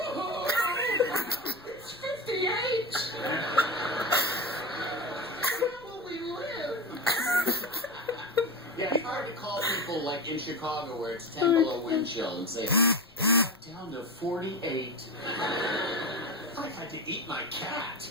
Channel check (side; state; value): left; noise; rumble, 29 dB below the sound